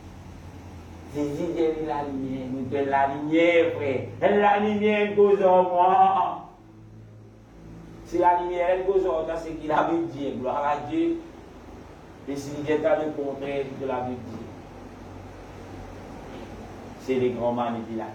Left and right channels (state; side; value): identical; both; correlation 1.00